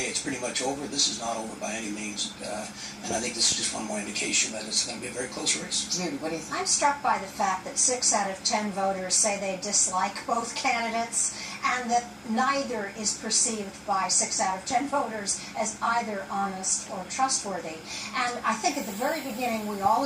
it's pretty much over. This is not over by any means. And I think this is just one more indication that it's going to be a very close race. Judy, what do you think? I'm struck by the fact that 6 out of 10 voters say they dislike both candidates, and that neither is perceived by 6 out of 10 voters as either honest or trustworthy. And I think at the very beginning we all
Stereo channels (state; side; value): identical; both; correlation 1.00